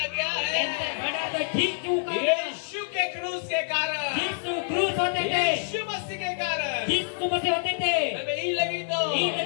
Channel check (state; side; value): silent; right; digital silence